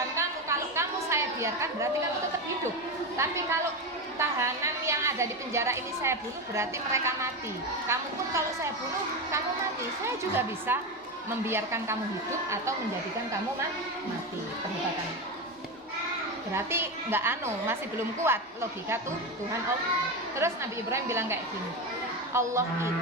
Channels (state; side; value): normal; both; correlation 0.17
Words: kamu, kalau kamu saya biarkan berarti kamu tetap hidup. Tapi kalau tahanan yang ada di penjara ini saya bunuh berarti mereka mati. Kamu pun kalau saya bunuh kamu mati. Saya juga bisa membiarkan kamu hidup atau menjadikan kamu mati. Perdebatan. Berarti masih belum kuat logika Tuhan Allah. Terus Nabi Ibrahim bilang kayak gini, Allah